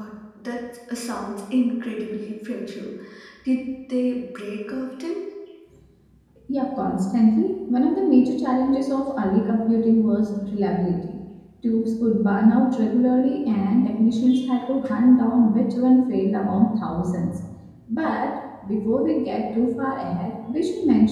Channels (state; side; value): identical; both; correlation 1.00